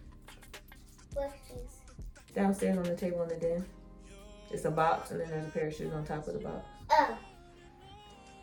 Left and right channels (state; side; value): identical; both; correlation 1.00